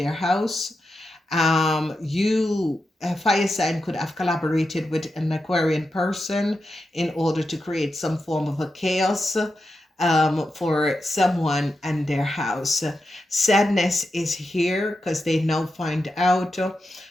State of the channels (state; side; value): normal; both; correlation 0.89